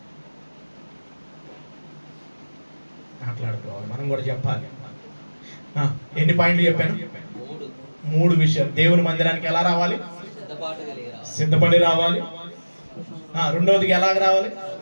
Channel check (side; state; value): both; inverted; correlation -1.00